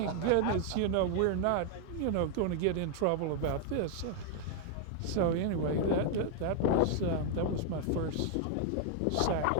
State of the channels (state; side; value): different; both; correlation 0.00